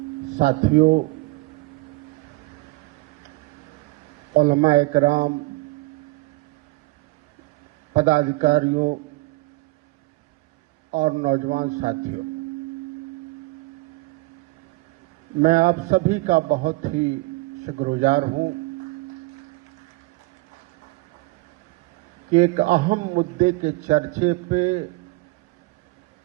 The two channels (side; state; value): left; quieter; 22.8 dB